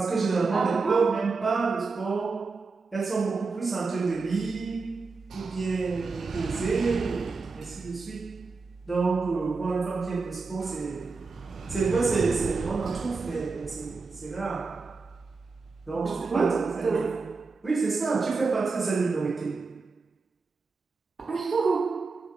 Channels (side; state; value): left; quieter; 4.3 dB